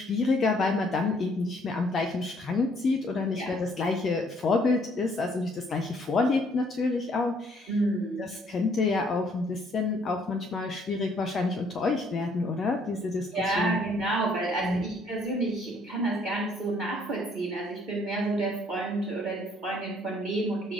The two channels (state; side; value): normal; both; correlation 0.65